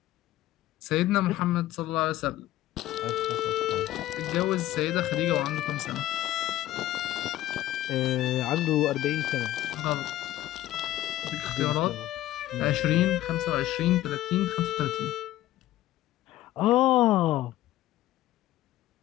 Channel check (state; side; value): quieter; right; 14.5 dB